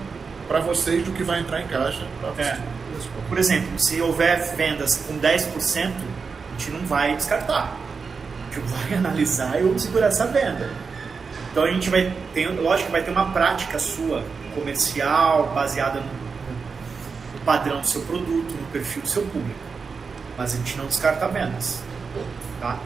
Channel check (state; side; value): quieter; left; 5.1 dB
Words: para vocês do que vai entrar em caixa? Por exemplo, se houver vendas com 10%, a gente não vai descartar. A gente vai analisar e vamos segurar essa venda. Então a gente vai ter, lógico que vai ter uma prática sua comercial baseada no padrão do seu produto, no perfil do seu público. Mas a gente não descarta vendas. Tá?